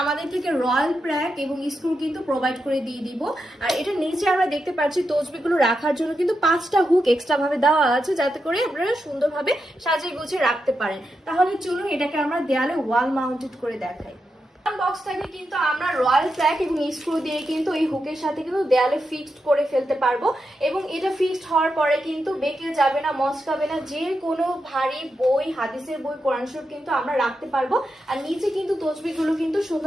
আমাদের থেকে রয়্যাল প্র্যাক এবং স্ক্রু কিন্তু প্রোভাইড করে দিয়ে দিব। আর এটা নিচে আমরা দেখতে পাচ্ছি তসবিগুলো রাখার জন্য কিন্তু 5টা হুক এক্সট্রা ভাবে দেওয়া আছে, যাতে করে আপনারা সুন্দরভাবে সাজিয়ে গুছিয়ে রাখতে পারেন। তাহলে চলুন এটাকে আমরা দেয়ালে ওয়াল মাউন্টেড করে দেখাই। বক্সটাকে কিন্তু আমরা রয়্যাল প্র্যাক এবং স্ক্রু দিয়ে কিন্তু এই হুকের সাথে কিন্তু দেয়ালে ফিক্সড করে ফেলতে পারবো, এবং এটা ফিক্সড হওয়ার পরে কিন্তু বেঁকে যাবে না, মচকাবে না। যে কোনো ভারী বই, হাদিসের বই, কোরআন শরীফ কিন্তু আমরা রাখতে পারবো। আর নিচে কিন্তু তসবিহগুলো কিন্তু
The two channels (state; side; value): normal; both; correlation 0.87